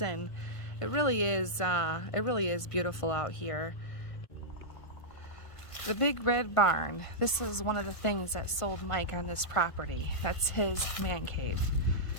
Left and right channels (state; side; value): late; right; 1.5 ms